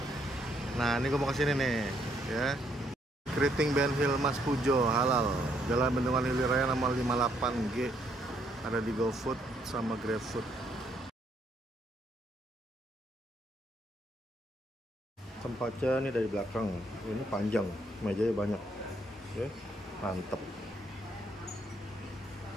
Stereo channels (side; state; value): both; normal; correlation 0.71